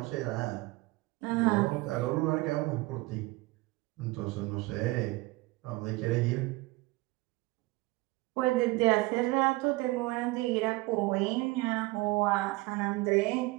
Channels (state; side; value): quieter; left; 22.2 dB